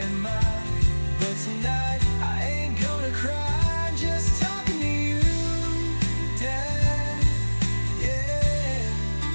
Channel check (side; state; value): both; inverted; correlation -1.00